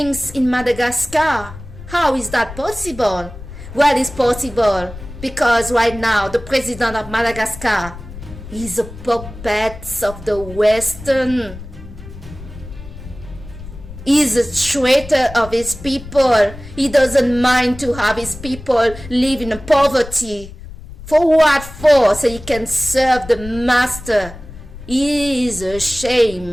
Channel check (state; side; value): noise; left; rumble, 14 dB below the sound